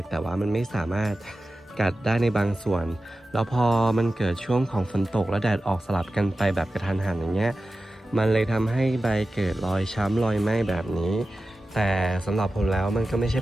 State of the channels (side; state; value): both; normal; correlation 0.94